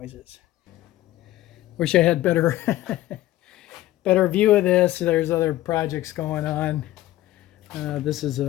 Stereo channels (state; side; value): quieter; right; 15.2 dB